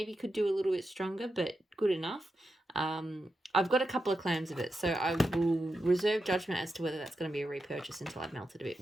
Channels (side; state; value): both; normal; correlation 0.88